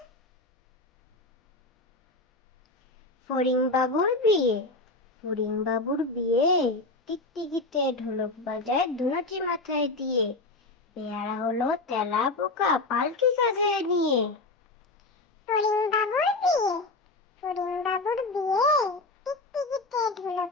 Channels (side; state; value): right; quieter; 3.1 dB